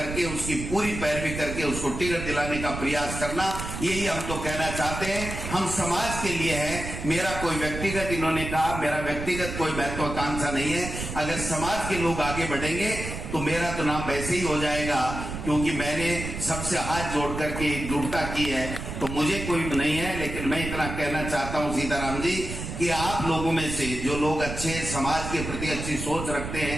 उसकी पूरी पैरवी करके उसको टिकट दिलाने का प्रयास करना, यही हम तो कहना चाहते हैं। हम समाज के लिए हैं, मेरा कोई व्यक्तिगत, इन्होंने कहा मेरा व्यक्तिगत कोई महत्वाकांक्षा नहीं है। अगर समाज के लोग आगे बढ़ेंगे तो मेरा तो नाम वैसे ही हो जाएगा, क्योंकि मैंने सबसे हाथ जोड़ करके एकजुटता की है, तो मुझे कोई नहीं है। लेकिन मैं इतना कहना चाहता हूं सीताराम जी कि आप लोगों में से जो लोग अच्छे, समाज के प्रति अच्छी सोच रखते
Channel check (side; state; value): right; noise; rumble, 7 dB below the sound